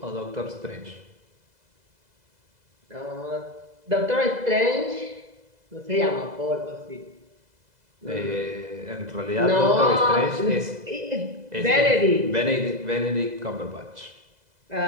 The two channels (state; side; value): late; left; 2.0 ms